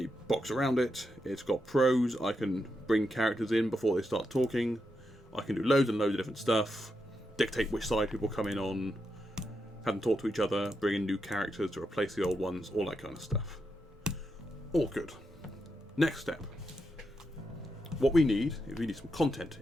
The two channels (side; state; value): both; normal; correlation 0.84